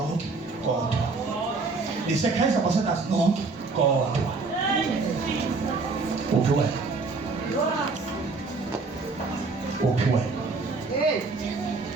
kodwa. Nisi-praise ambassadors nonke kodwa. Uphi wena? Uphi wena?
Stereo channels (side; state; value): left; quieter; 4.0 dB